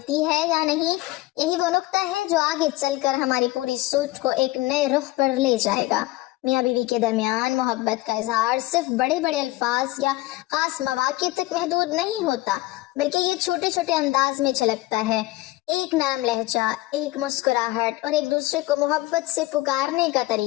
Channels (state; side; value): quieter; right; 18.7 dB